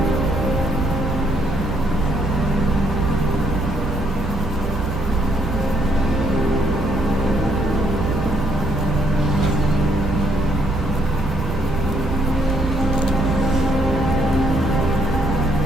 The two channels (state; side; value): normal; both; correlation 0.71